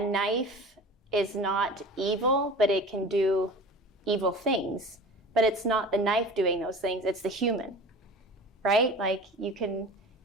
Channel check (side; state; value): both; normal; correlation 0.38